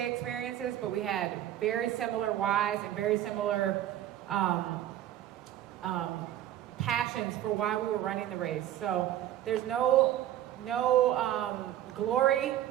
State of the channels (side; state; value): left; quieter; 12.3 dB